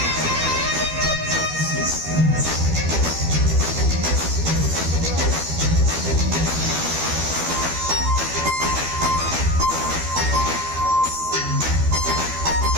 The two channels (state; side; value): late; left; 12 ms